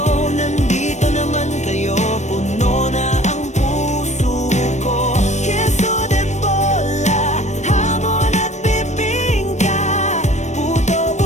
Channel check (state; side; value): late; right; 0.34 ms